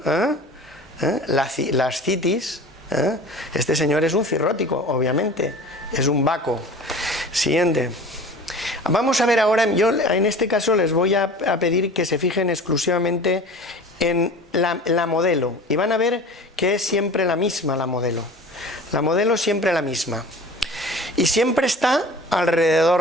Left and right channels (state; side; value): normal; both; correlation 0.40